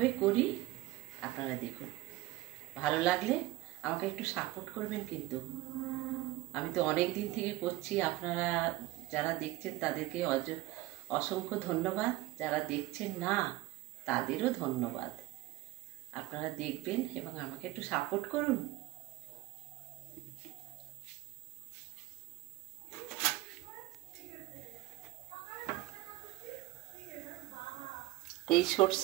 করি আপনারা দেখুন। ভালো লাগলে আমাকে একটু সাপোর্ট করবেন কিন্তু। আমি তো অনেক দিন থেকে করছি, আপনারা যারা দেখছেন তাদেরকে অসংখ্য ধন্যবাদ, যারা দেখছেন না তাদেরও ধন্যবাদ। আপনারা দেখবেন এবং আমাকে একটু সাপোর্ট করুন। এই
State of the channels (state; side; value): quieter; left; 18.4 dB